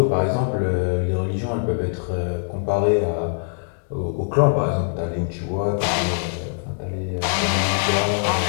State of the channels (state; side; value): silent; right; digital silence